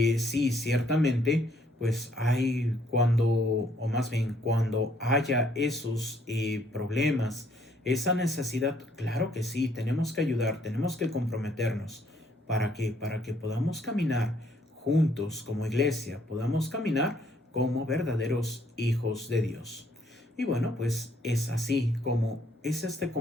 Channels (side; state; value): both; normal; correlation 0.66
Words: ciertamente, pues hay cuando, o más bien cuando haya esos problemas, esa necesidad, claro que sí, tenemos que ayudar, tenemos que comprometernos. ¿Para qué? Para que podamos caminar juntos como iglesia, podamos caminar como verdaderos hijos de Dios. Y bueno, pues es así como es este